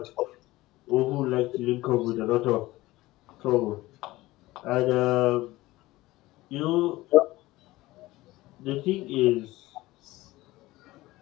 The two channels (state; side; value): quieter; right; 18.4 dB